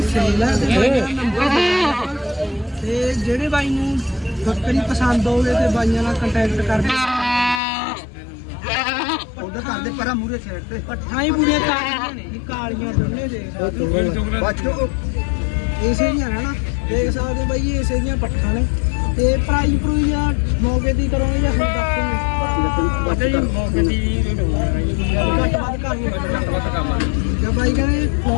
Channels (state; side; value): drops out; right; at 7.6 s